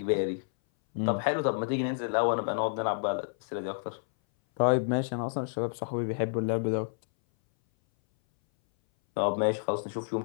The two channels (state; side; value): silent; right; 58 dB below the other